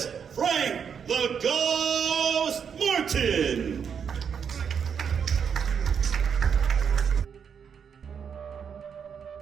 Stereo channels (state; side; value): quieter; left; 7.2 dB